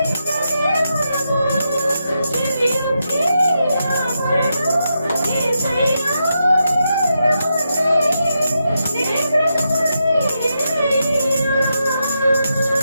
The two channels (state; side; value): inverted; both; correlation -0.85